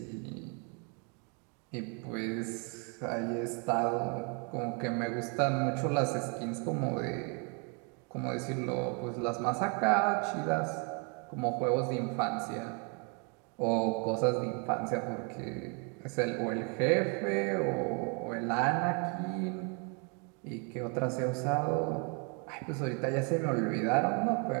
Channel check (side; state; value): left; quieter; 36.2 dB